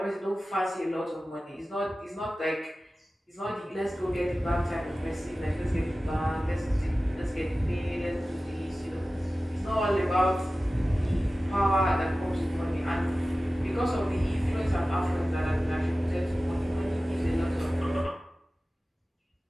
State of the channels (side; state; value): both; normal; correlation 0.96